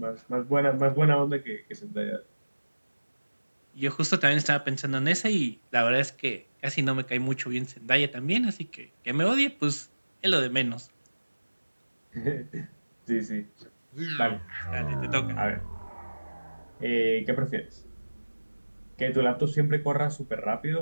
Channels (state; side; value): inverted; both; correlation -1.00